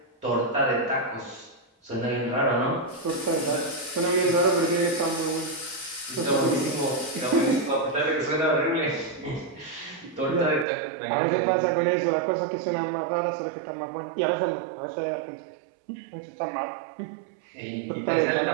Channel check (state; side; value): drops out; left; at 10.7 s